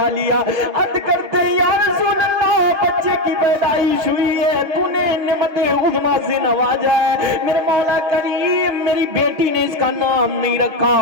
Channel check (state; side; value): late; left; 6.6 ms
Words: لیا، عرض کرتے ہیں یا رسول اللہ بچے کی پیدائش ہوئی ہے، تو نے نعمت عظمیٰ سے نوازا ہے، میرے مولا کریم میری بیٹی نے اس کا نام نہیں